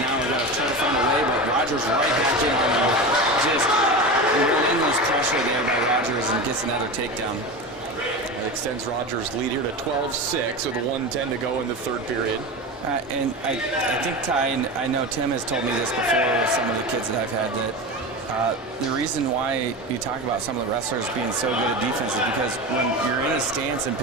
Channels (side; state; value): both; normal; correlation 0.25